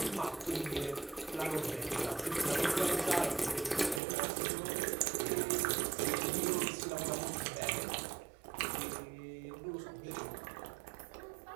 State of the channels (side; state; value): left; drops out; at 4.0 s